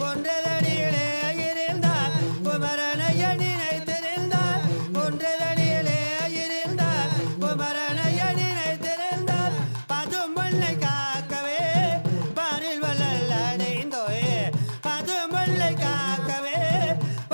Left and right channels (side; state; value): both; inverted; correlation -1.00